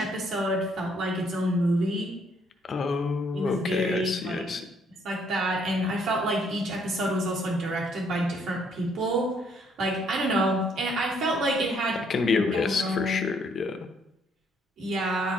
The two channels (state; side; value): normal; both; correlation 0.67